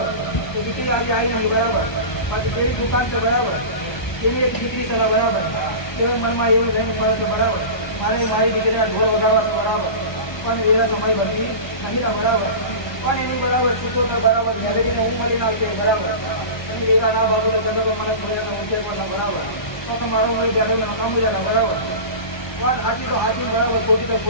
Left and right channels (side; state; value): right; late; 1.2 ms